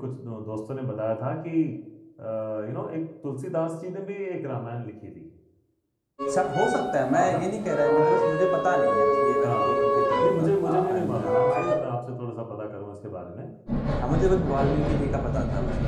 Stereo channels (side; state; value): both; identical; correlation 1.00